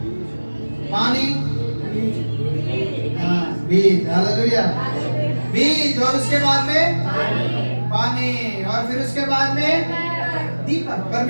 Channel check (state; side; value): inverted; both; correlation -1.00